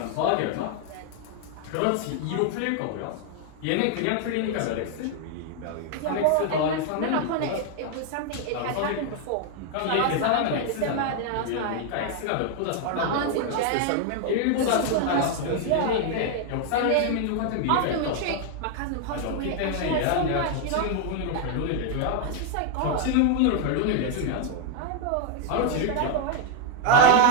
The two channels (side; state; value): both; different; correlation 0.00